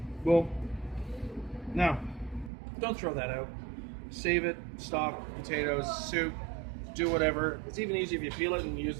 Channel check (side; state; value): left; drops out; at 2.5 s